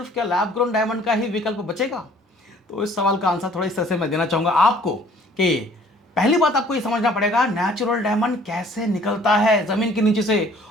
क्या लैब ग्रोन डायमंड का ही विकल्प बचेगा? तो इस सवाल का आंसर थोड़ा इस तरह से मैं देना चाहूंगा आपको कि पहली बात आपको ये समझना पड़ेगा नेचुरल डायमंड कैसे निकलता है जमीन के नीचे से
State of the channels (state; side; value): normal; both; correlation 0.56